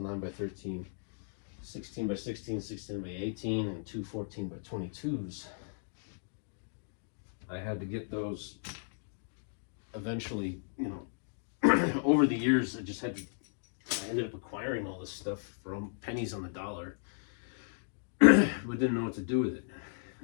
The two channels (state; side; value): silent; right; digital silence